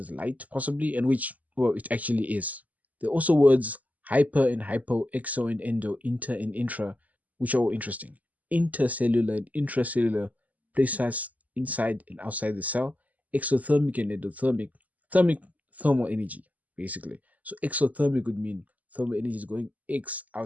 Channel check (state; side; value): late; left; 0.077 ms